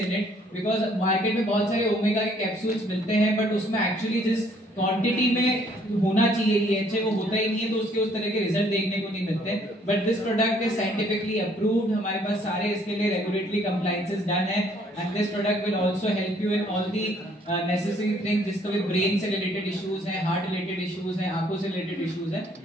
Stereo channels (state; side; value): normal; both; correlation 0.63